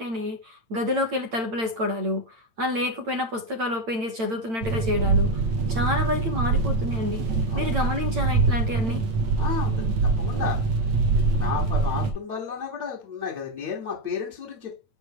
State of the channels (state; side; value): late; left; 8.9 ms